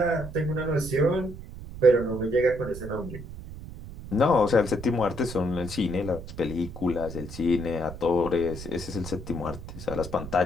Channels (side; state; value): right; noise; rumble, 12 dB below the sound